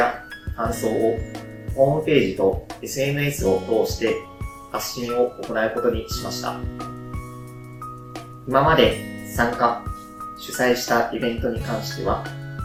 感想をホームページと SNS を通して発信を行うことにしました。今まで参加、主催したイベントに関しては、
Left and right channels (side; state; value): both; identical; correlation 1.00